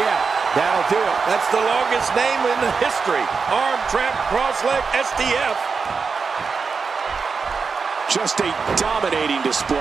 That'll do it. That's the longest name in the history. Arm trap cross-leg STF. Just a dominating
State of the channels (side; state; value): left; quieter; 5.1 dB